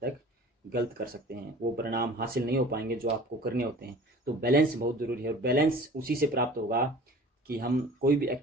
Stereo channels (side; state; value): both; normal; correlation 0.44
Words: तक गलत कर सकते हैं, वो परिणाम हासिल नहीं हो पाएंगे जो आपको करने होते हैं। तो बैलेंस बहुत ज़रूरी है, और बैलेंस उसी से प्राप्त होगा कि हम कोई भी